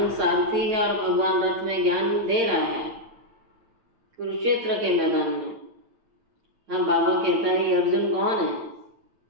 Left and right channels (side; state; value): left; late; 9.2 ms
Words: सारथी है और भगवान रथ में ज्ञान दे रहा है कुरुक्षेत्र के मैदान में। हाँ, बाबा कहता है ये अर्जुन कौन है?